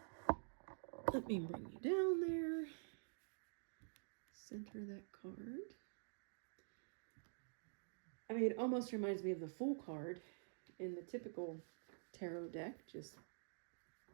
Let me bring you down there. Center that card. I mean, it almost reminds me of the Fool card in the typical tarot deck, just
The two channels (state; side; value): silent; left; digital silence